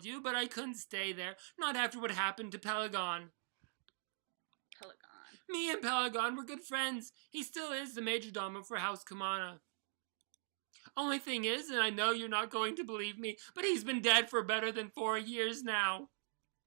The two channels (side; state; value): left; silent; digital silence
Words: you, but I couldn't stay there. Not after what happened to Pelagon. Pelagon. Me and Pelagon were good friends. He still is the majordomo for House Kamana. Only thing is, and I know you're not going to believe me, but he's been dead for better than 4 years now.